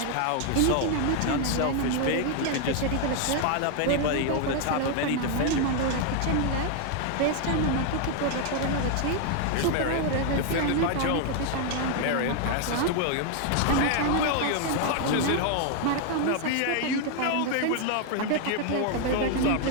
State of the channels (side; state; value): both; different; correlation 0.00